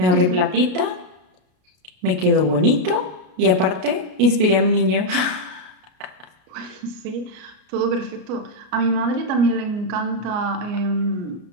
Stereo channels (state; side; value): late; left; 33 ms